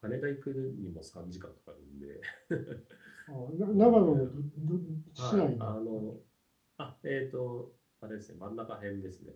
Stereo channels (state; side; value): identical; both; correlation 1.00